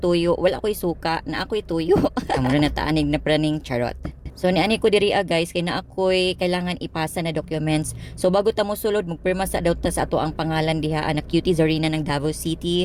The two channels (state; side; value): identical; both; correlation 1.00